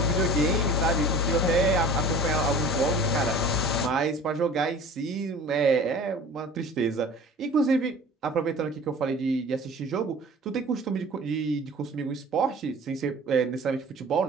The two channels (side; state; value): both; normal; correlation 0.42